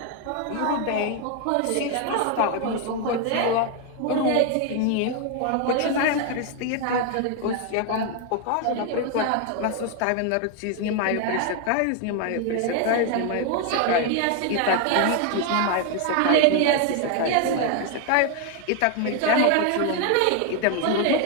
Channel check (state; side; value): different; both; correlation 0.01